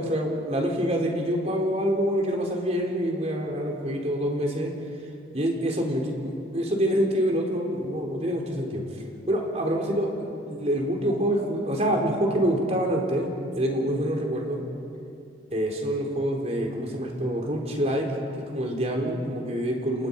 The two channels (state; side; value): normal; both; correlation 0.55